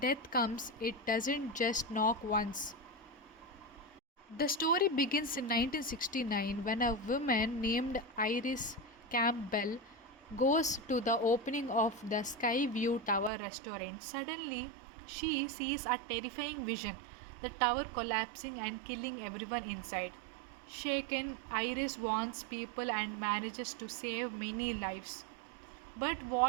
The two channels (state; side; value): drops out; left; at 13.3 s